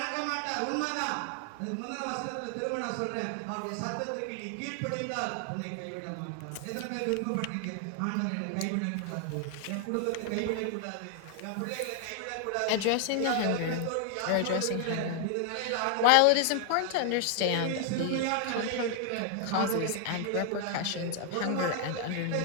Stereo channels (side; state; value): both; different; correlation 0.00